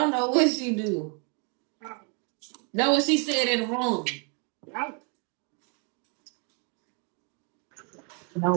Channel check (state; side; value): quieter; left; 36.4 dB